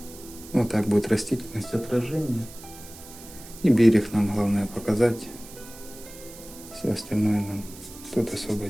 Вот так будет растительность, отражение. И берег нам главное показать. Все остальное нам тут особо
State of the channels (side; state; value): right; noise; hiss, 17 dB below the sound